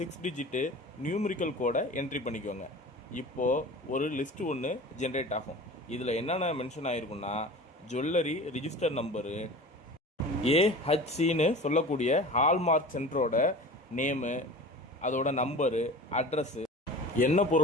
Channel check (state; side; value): normal; both; correlation 0.37